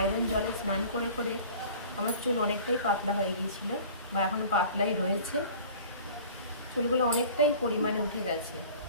জলে স্নান করে করে আমার চুল অনেকটাই পাতলা হয়ে গিয়েছিল, বা এখনও পাতলাই রয়েছে। চুলগুলো অনেকটাই পরিমাণে উঠে গেছে।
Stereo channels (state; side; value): inverted; both; correlation -0.44